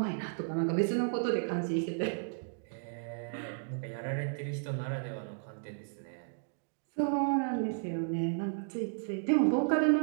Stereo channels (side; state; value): left; silent; digital silence